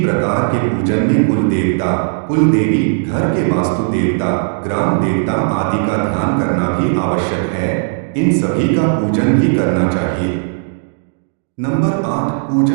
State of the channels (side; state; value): left; silent; digital silence